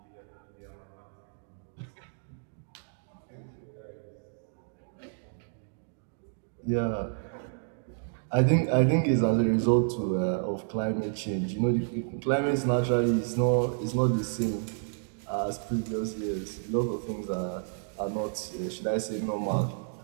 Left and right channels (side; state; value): left; silent; digital silence